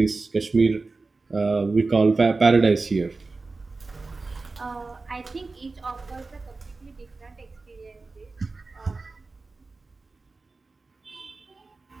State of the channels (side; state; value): left; quieter; 3.8 dB